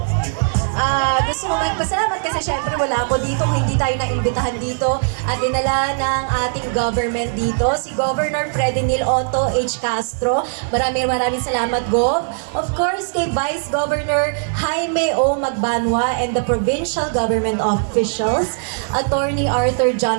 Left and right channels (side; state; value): left; silent; digital silence